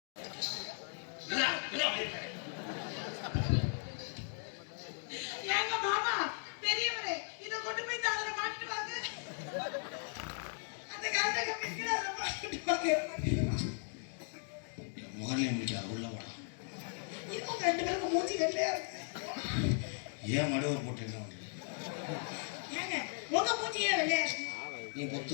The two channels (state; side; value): silent; right; 53 dB below the other